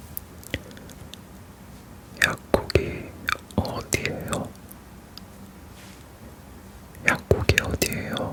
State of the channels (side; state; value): both; identical; correlation 1.00